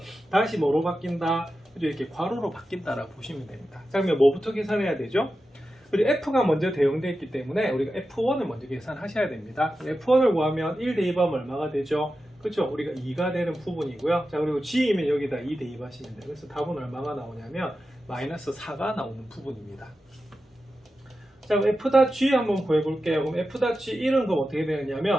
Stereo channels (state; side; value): normal; both; correlation 0.92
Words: 다시 뭐로 바뀐다? 그죠? 이렇게 괄호로 바뀐다라고 보시면 됩니다. 자, 그러면 뭐부터 계산해야 되죠? 그리고 F가 먼저 대응되어 있기 때문에 우리가 F1을 먼저 계산하셔야 됩니다. F1을 구하면 1 대입하면 얼마가 되죠? 그렇죠? 우리가 2가 되는 부분이고요. 자, 그리고 G이면 여기다 2 대입하시면 돼요. 그래서 답은 얼마가 나오냐면 마이너스 4가 나오는 부분입니다. 자, 그럼 F.G 한번 구해볼게요. 그럼 F.G 1은 그럼 어떻게